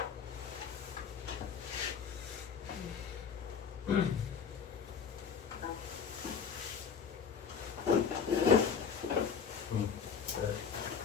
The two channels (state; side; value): quieter; right; 6.6 dB